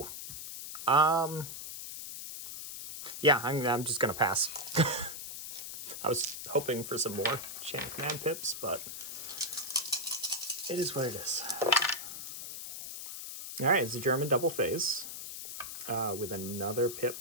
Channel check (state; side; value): noise; left; hiss, 8 dB below the sound